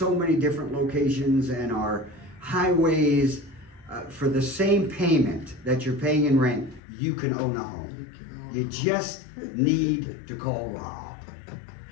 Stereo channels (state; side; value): drops out; right; at 6.8 s